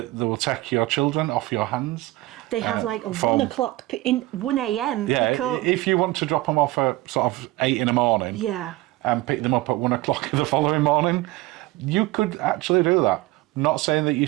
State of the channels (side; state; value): left; quieter; 18.8 dB